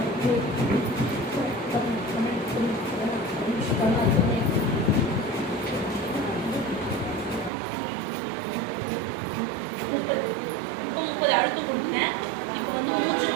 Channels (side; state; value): left; drops out; at 7.5 s